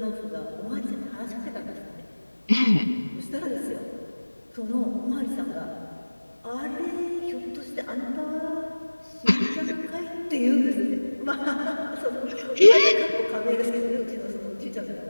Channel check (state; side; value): inverted; both; correlation -1.00